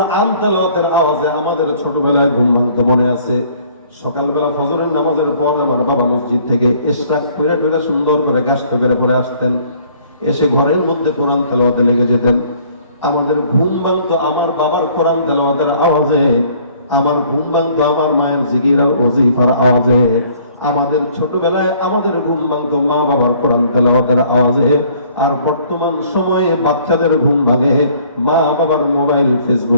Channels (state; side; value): inverted; both; correlation -0.58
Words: তেলাওয়াতের আওয়াজে আমাদের ছোটবেলায় ঘুম ভাঙতে মনে আছে। সকালবেলা ফজরের নামাজের পর আমার বাবা মসজিদ থেকে ইশরাক করে ঢুকে সুন্দর করে গাছটা করে পরে আসতেন, এসে ঘরের মধ্যে কোরআন তেলাওয়াতে লেগে যেতেন। আমাদের ঘুম ভাঙতো আমার বাবার কোরআন তেলাওয়াতের আওয়াজে, আমার ঘুম ভাঙতো আমার মায়ের জিকির আর ওজিফার আওয়াজে। আমাদের ছোটবেলায় আমাদের ঘুম ভাঙতো মা বাবার কোরআন তেলাওয়াতের আওয়াজে। আর বর্তমান সময়ে বাচ্চাদের ঘুম ভাঙে মা বাবার মোবাইল